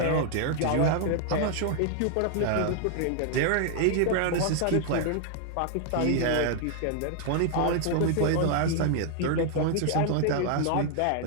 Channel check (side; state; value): both; different; correlation 0.00